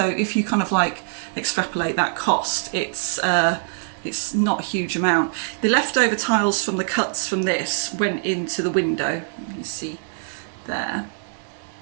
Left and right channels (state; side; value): silent; left; digital silence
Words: if you kind of like extrapolate that cost, it's not a huge amount. The leftover tiles from the cuts from this went into the window. You see there.